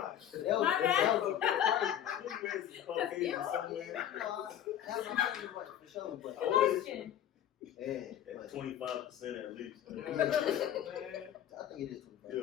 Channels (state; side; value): quieter; right; 10.7 dB